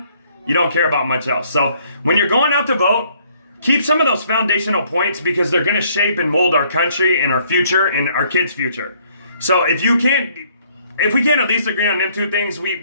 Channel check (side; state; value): both; inverted; correlation -0.64